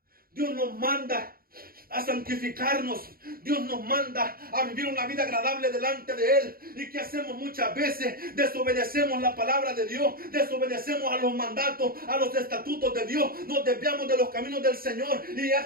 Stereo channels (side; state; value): left; late; 0.43 ms